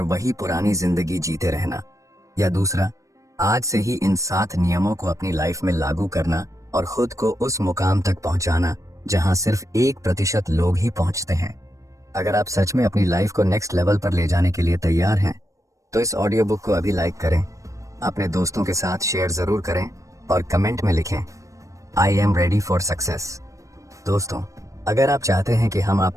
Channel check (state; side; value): late; left; 0.15 ms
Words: वही पुरानी जिंदगी जीते रहना, या दूसरा, आज से ही इन 7 नियमों को अपनी लाइफ में लागू करना और खुद को उस मुकाम तक पहुंचाना जहां सिर्फ 1% लोग ही पहुंचते हैं। अगर आप सच में अपनी लाइफ को नेक्स्ट लेवल पर ले जाने के लिए तैयार हैं तो इस ऑडियो बुक को अभी लाइक करें, अपने दोस्तों के साथ शेयर जरूर करें और कमेंट में लिखें, I am ready for success. दोस्तों, अगर आप चाहते हैं कि हम